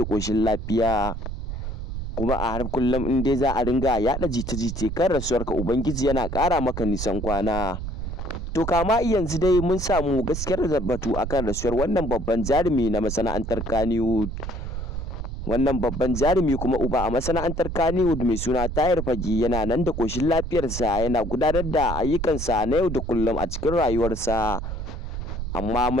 ƙoshin lafiya. Kuma a har kullum in dai za a ringa yaɗa jita-jita kan rasuwarka, Ubangiji yana ƙara maka nisan kwana. To kama yanzu dai mun samu gaskiyar batu akan rasuwar wannan babban jarumi na masana'antar Kannywood. Wannan babban jarumi kuma uba a masana'antar Kannywood mai suna Tahir Fage yana nan da ƙoshin lafiyarsa, yana gudanar da ayyukansa na yau da kullum a cikin rayuwarsa. Amma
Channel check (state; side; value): noise; right; rumble, 5 dB below the sound